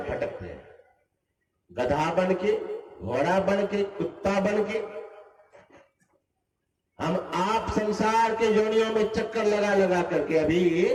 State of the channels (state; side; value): identical; both; correlation 1.00